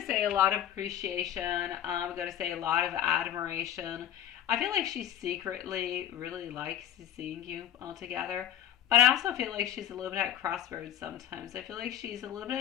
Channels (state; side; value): quieter; right; 10.6 dB